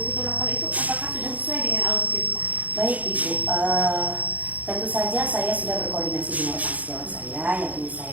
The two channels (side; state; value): left; late; 0.075 ms